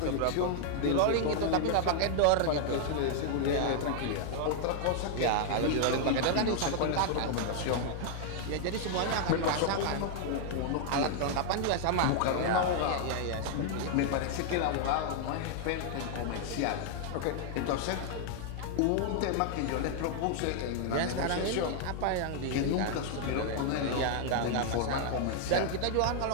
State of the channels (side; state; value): both; different; correlation 0.00